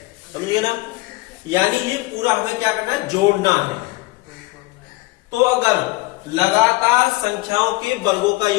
समझिए ना, यानी ये पूरा हमें क्या करना है, जोड़ना है। तो अगर लगातार संख्याओं के वर्गों का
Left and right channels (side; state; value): right; quieter; 21.9 dB